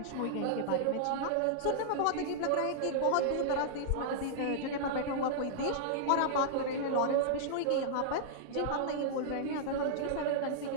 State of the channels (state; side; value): different; both; correlation -0.01